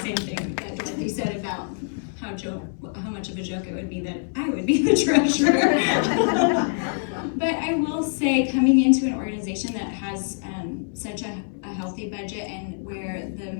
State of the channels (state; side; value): silent; right; 62 dB below the other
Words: same thing that Dorothy said about how much of a joke it would be that I would be the treasurer. But I will say, coming into an organization that has such a healthy budget and where the